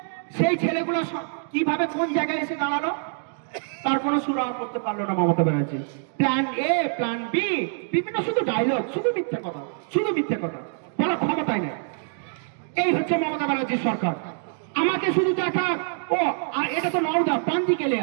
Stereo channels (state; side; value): silent; left; digital silence